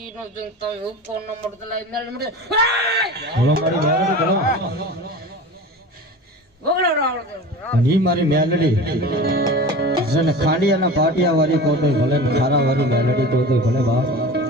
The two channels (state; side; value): normal; both; correlation 0.34